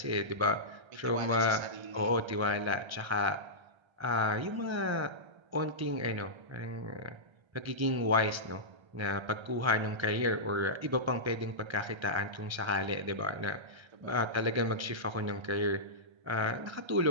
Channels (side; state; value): left; late; 1.3 ms